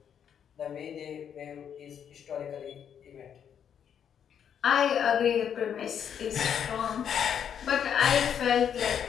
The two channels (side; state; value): right; quieter; 8.4 dB